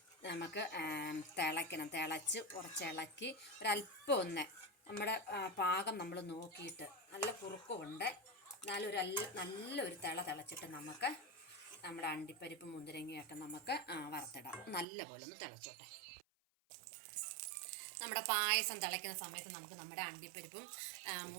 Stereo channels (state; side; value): drops out; left; at 14.9 s